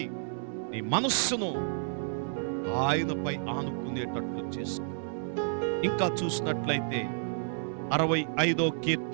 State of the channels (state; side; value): silent; left; digital silence